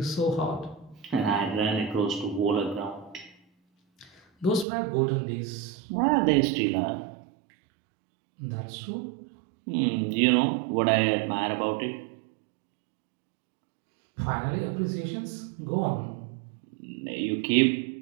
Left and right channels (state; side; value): drops out; left; at 4.7 s